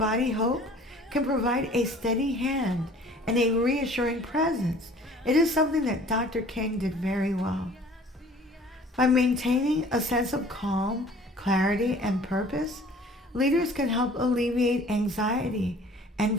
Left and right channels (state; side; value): normal; both; correlation 0.50